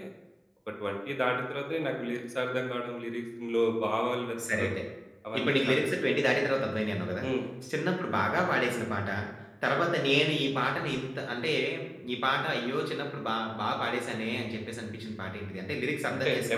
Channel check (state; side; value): identical; both; correlation 1.00